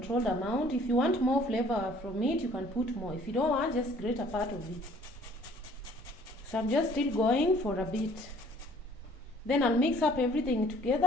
amount. If you want more flavor from it, you can put more. If you don't want, just grate a part of it. So I'm just still going for a bit. Then I'll mix up everything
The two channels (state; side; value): normal; both; correlation 0.56